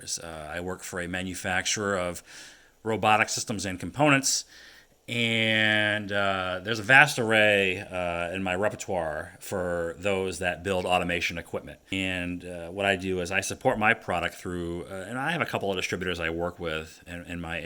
I work for a manufacturer of robotic systems and components, and there's a vast array in my repertoire for those that build automation equipment. And what I do is I support my product through, and I have a couple of distributors I work with in my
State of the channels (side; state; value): both; identical; correlation 1.00